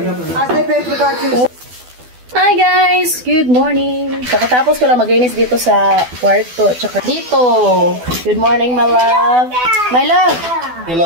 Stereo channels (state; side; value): late; left; 12 ms